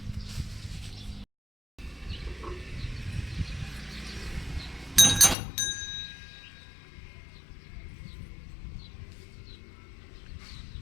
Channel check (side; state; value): right; drops out; at 5.4 s